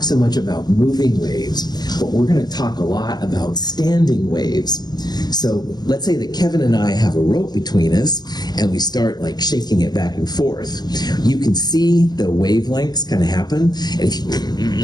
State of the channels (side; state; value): right; late; 0.20 ms